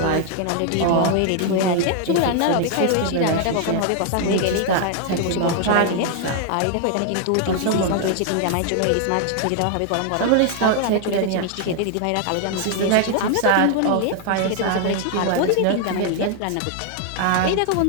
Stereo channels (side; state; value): both; different; correlation 0.00